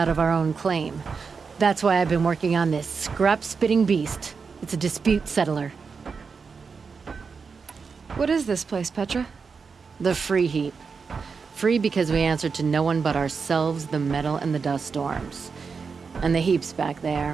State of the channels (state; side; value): quieter; left; 5.3 dB